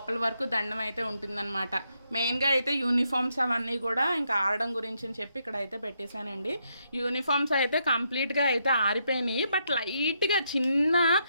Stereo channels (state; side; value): inverted; both; correlation -0.78